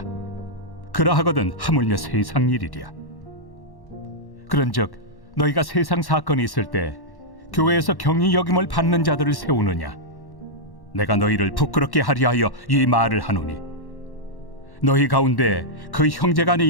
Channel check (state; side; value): late; right; 1.1 ms